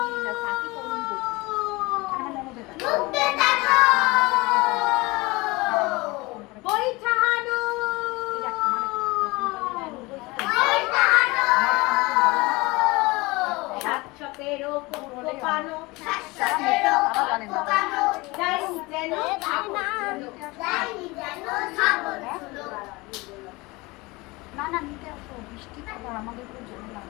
মুক্তে টানো পয়সা হানো পয়সা হানো 717 কোপানো শাশ্বতেরও কোপানো ডাইনি যেন ডাইনি যেন ছাগল ছিল না না নিতে আসো বৃষ্টি খবর আমাদের খুব ঝামেলা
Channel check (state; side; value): quieter; right; 23.4 dB